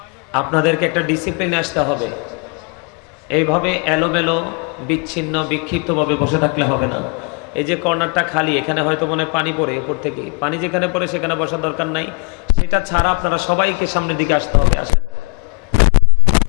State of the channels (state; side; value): quieter; right; 33.6 dB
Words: আপনাদেরকে একটা ডিসিপ্লিনে আসতে হবে। এইভাবে এলোমেলো বিচ্ছিন্ন বিক্ষিপ্তভাবে বসে থাকলে হবে না। এই যে কর্নারটা খালি, এখানে হয়তো মনে পানি পড়ে, উপর থেকে পানি যেখানে পড়ে সেখানে বসার দরকার নাই, সেটা ছাড়া আপনারা সবাইকে সামনের দিকে আসতে হবে। আসেন,